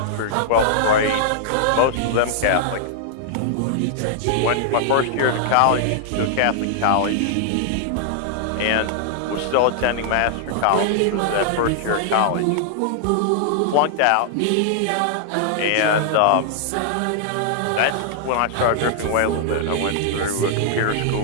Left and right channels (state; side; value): different; both; correlation -0.01